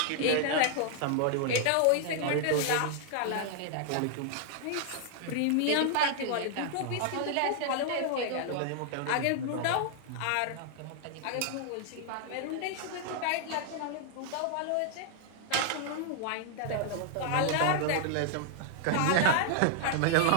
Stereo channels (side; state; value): both; different; correlation 0.00